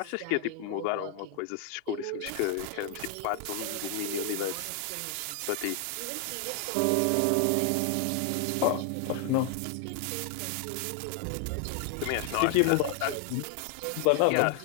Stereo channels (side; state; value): both; different; correlation 0.00